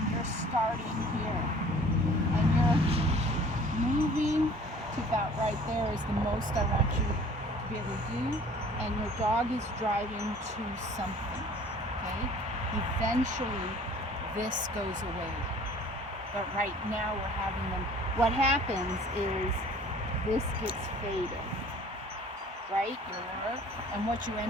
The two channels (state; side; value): normal; both; correlation 0.50